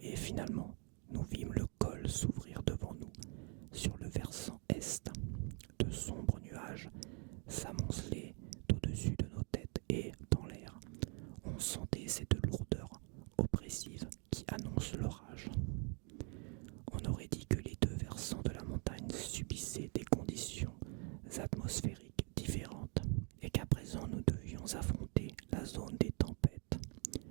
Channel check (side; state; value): left; quieter; 37.0 dB